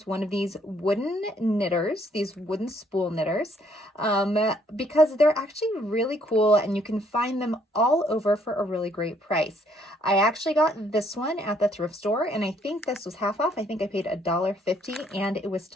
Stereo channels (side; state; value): both; normal; correlation 0.67